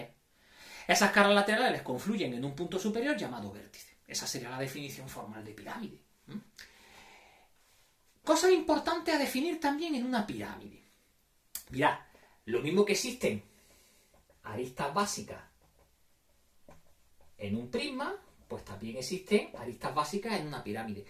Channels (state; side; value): identical; both; correlation 1.00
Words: Esas caras laterales confluyen en un punto superior llamado vértice. Esa sería la definición formal de pirámide. Cosas importantes a definir también en una pirámide. Mirad, lo mismo que existen aristas básicas en un prisma, pues también existen aristas básicas en una pirámide.